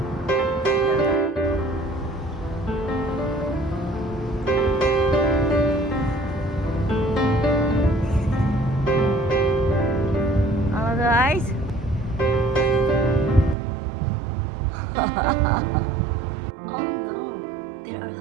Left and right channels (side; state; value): left; drops out; at 13.6 s